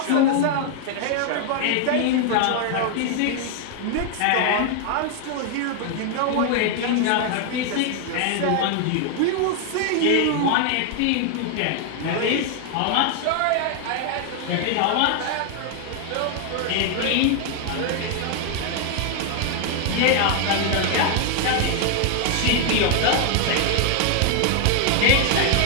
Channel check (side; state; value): both; different; correlation 0.00